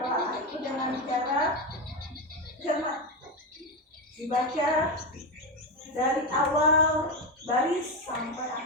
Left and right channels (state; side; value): normal; both; correlation 0.12